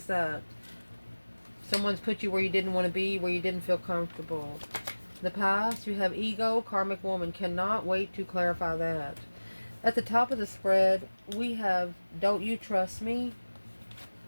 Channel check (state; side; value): inverted; both; correlation -1.00